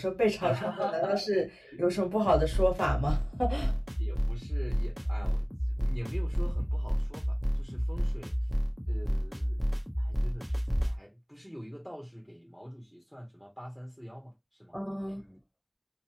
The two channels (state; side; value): identical; both; correlation 1.00